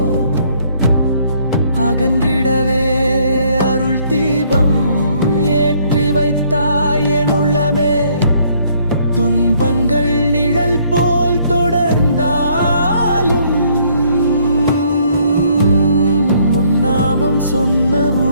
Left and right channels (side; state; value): both; inverted; correlation -0.65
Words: அகன்றிடவே அருள் தீபம் ஏற்றி வைத்தாய் என் உள்ளமே. துன்பங்கள் நிழல் போல் தொடர்ந்தாலும் முன்னாமம்